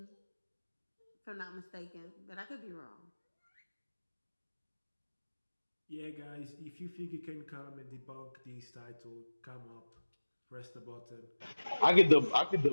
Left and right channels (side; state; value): both; inverted; correlation -1.00